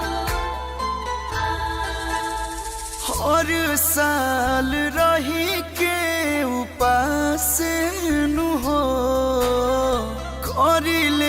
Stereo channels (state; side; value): identical; both; correlation 1.00